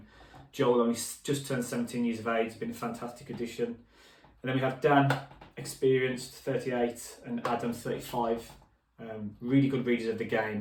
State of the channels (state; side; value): identical; both; correlation 1.00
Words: Joel only just turned 17 years of age, been a fantastic addition. And then we have Dan, experienced, 38, and Adam, 35. Really good readers of the